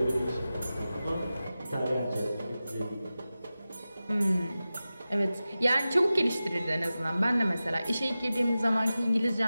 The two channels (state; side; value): inverted; both; correlation -0.95